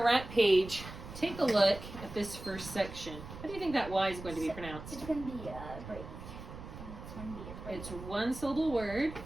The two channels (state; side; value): noise; right; rumble, 12 dB below the sound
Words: rap page. Take a look at this first section. How do you think that Y is going to be pronounced? It's going to be a break. It's 1-syllable word.